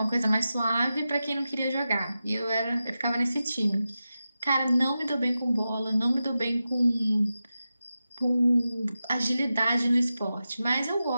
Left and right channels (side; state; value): both; inverted; correlation -0.91